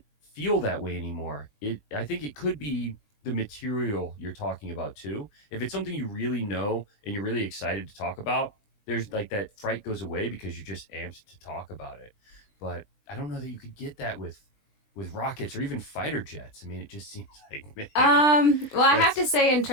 feel that way anymore. I think it could be the material you're talking about too. If it's something you really know and you're really excited to talk about, there's like that fright goes away because you're just amped to talk about it. But I don't know that you could get that with rockets or even fighter jets. I mean, it just seems like, man, Well, I have that's to say, in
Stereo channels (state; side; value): late; right; 20 ms